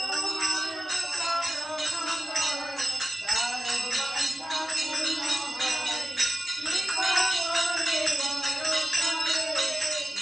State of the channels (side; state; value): both; normal; correlation 0.94